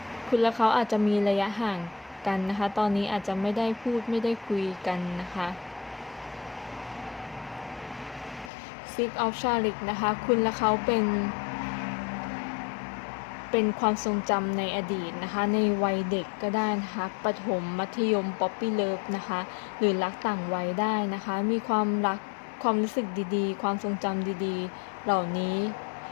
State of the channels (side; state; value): right; drops out; at 8.5 s